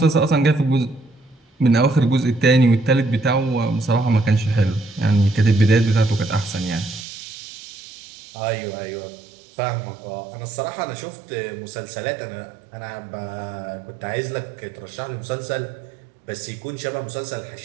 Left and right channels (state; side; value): drops out; left; at 7.1 s